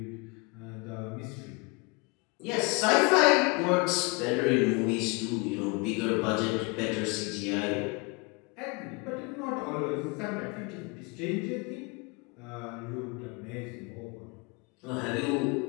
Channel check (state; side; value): quieter; right; 28.8 dB